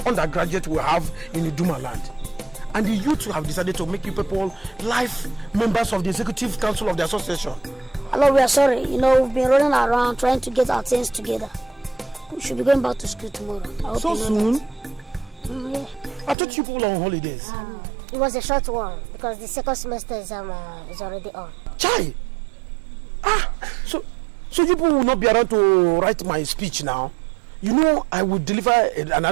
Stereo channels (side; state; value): left; drops out; at 16.4 s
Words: undergraduate we have in the Duma land. And the youth have decided to make you people life members of the executive council of the association. Hello, we are sorry. You know, we've been running around trying to get our things together. We should be going back to school tomorrow. I hope So you know soon? that. Yeah. I thought you people were on holidays. It was a short one because the second semester exam is already on. Chai! So you people will not be around to write my speech now. You know I will deliver an